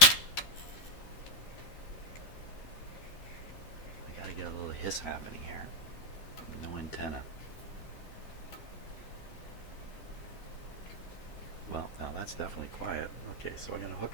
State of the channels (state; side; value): late; right; 12 ms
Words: I gotta get a little hiss happening here. No antenna. Well, now that's definitely quiet. Okay, so I'm gonna